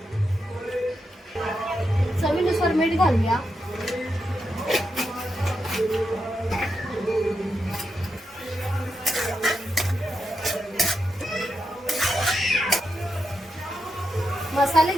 चवीनुसार मीठ घालूया. मसाले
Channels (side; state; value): both; normal; correlation 0.85